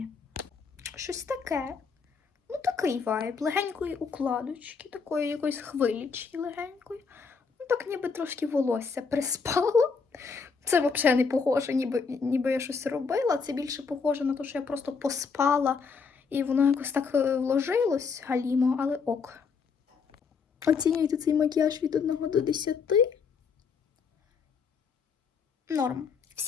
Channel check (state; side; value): quieter; right; 5.4 dB